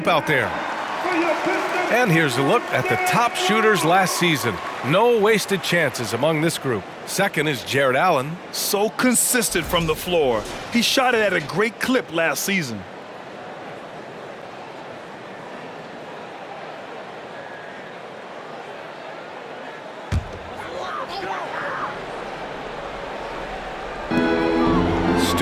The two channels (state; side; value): identical; both; correlation 1.00